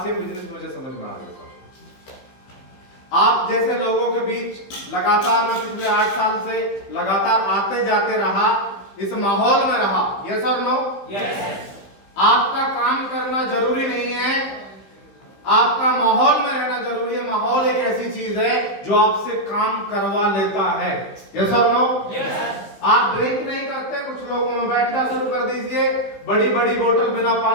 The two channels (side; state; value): right; late; 15 ms